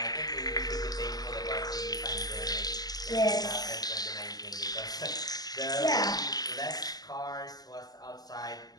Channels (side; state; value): right; late; 0.19 ms